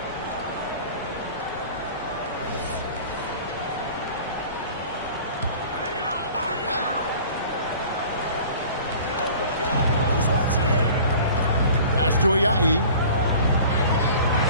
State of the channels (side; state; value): both; inverted; correlation -0.44